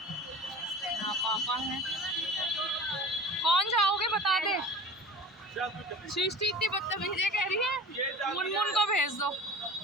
यहाँ पापा है। कौन जाओगे बता दे। सृष्टि इतनी बदतमीजी कह रही है, मुनमुन को भेज दो।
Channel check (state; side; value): normal; both; correlation 0.38